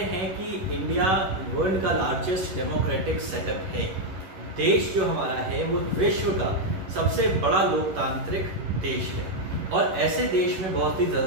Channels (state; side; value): late; left; 11 ms